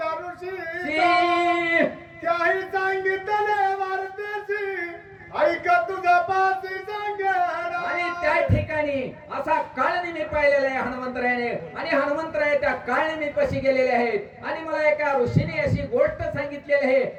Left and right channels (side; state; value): both; identical; correlation 1.00